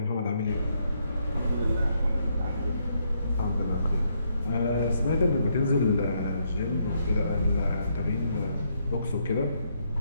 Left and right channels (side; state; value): both; inverted; correlation -0.75